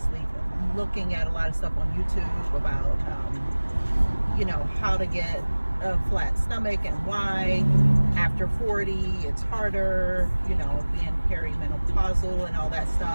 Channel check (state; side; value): inverted; both; correlation -1.00